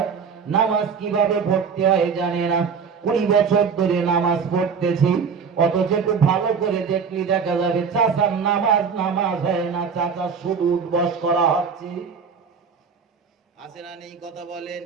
নামাজ কিভাবে পড়তে হয় জানে না। 20 বছর ধরে নামাজ পড়তেছি, অথচ একটু ভালো করে দেখলি দেখা যাবে চাচার নামাজ হয় না, চাচা শুধু উঠবস করা হচ্ছে। আছে না নেই? কথা বলেন।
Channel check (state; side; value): quieter; left; 6.0 dB